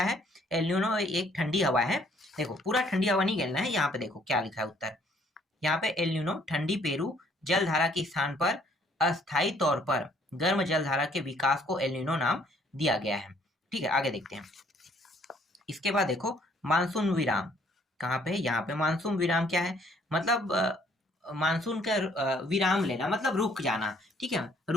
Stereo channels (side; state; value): both; normal; correlation 0.63